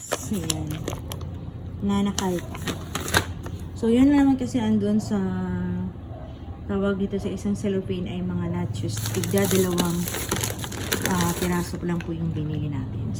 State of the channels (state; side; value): identical; both; correlation 1.00